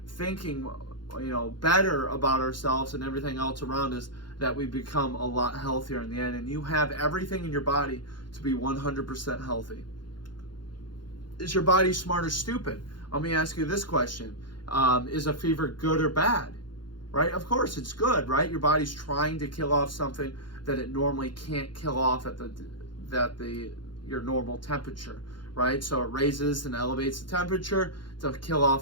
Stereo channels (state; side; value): late; right; 0.71 ms